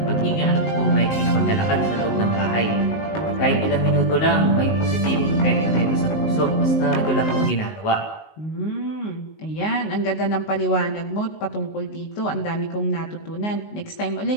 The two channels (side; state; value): right; late; 19 ms